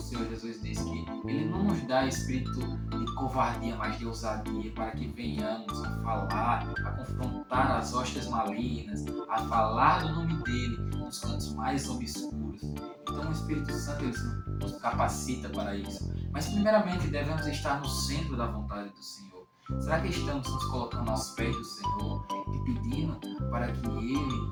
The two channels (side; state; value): both; identical; correlation 1.00